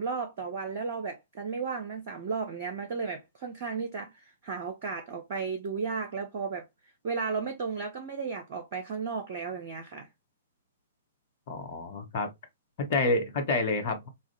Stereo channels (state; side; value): inverted; both; correlation -0.39